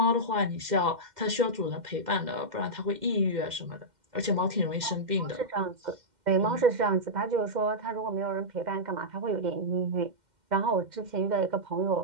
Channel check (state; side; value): late; left; 2.1 ms